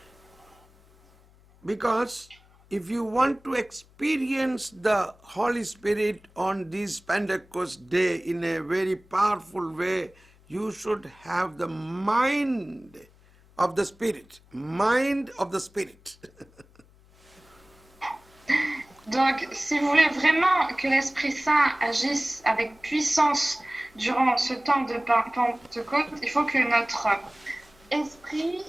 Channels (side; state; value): left; noise; hum, 28 dB below the sound